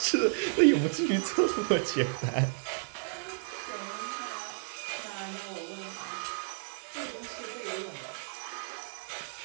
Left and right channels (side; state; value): left; silent; 56 dB below the other